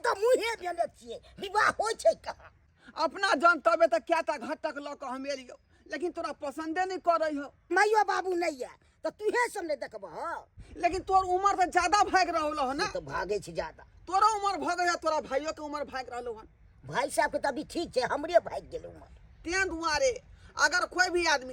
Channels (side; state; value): both; identical; correlation 1.00